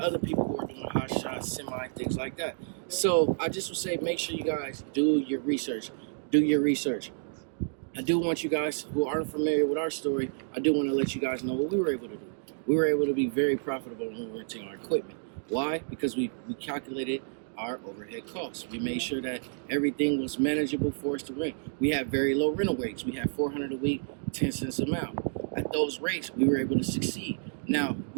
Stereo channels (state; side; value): silent; left; digital silence